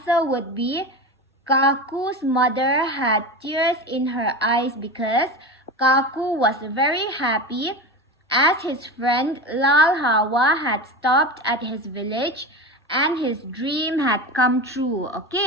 would be Kaku's mother had tears in her eyes because Kaku was very happy as his friend Lal Hawa had stopped at his village and his dream had come true.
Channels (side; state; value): both; normal; correlation 0.25